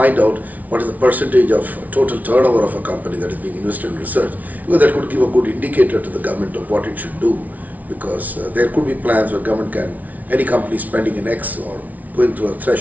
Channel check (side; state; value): left; late; 0.074 ms